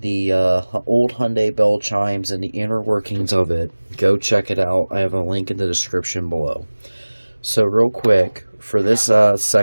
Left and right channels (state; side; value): inverted; both; correlation -1.00